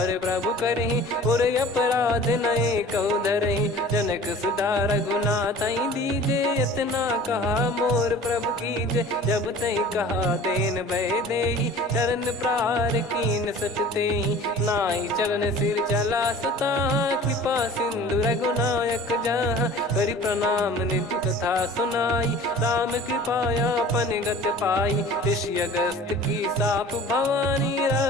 प्रभु करहि, और अपराध नए कहु धरहि। जनक सुधा रघुनाथ दीजे, इतना कहा मोर प्रभु कीजे। जब तई कहा देन भय देहि, चरण प्रहार कीन सटतेहि। नाई चरण सिर चला सता, कृपा सिंधु रघुनायक जहाँ। करि प्रणाम निज कथा सुनाई, राम कृपाया पन गत पाई। ऋषि अगस्त की साप भवानी,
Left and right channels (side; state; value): both; normal; correlation 0.44